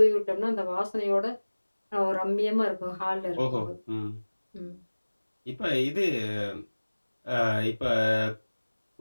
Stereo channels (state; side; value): inverted; both; correlation -1.00